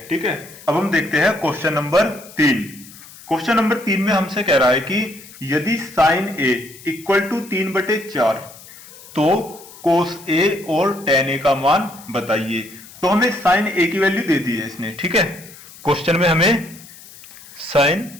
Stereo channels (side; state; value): left; noise; hiss, 19 dB below the sound